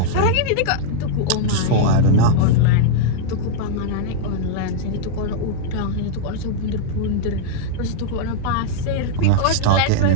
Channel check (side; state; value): both; different; correlation -0.01